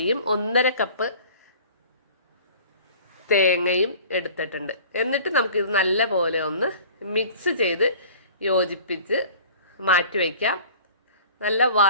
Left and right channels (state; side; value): inverted; both; correlation -0.45